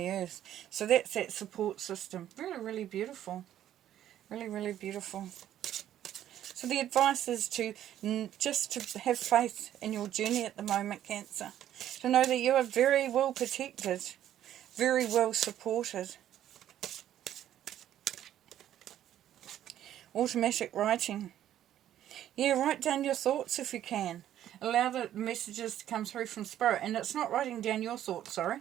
earth. So that's that support system. Really, really beautiful. Really, really beautiful. So the advice is just to have faith in your journey at the moment, Cancer. To know that you are very well protected, very well supported. Automatic writing. Yeah, write down your thoughts if you can. Allow the messages to come through from spirit. And it's not writing down your thoughts, sorry.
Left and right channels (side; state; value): left; quieter; 11.6 dB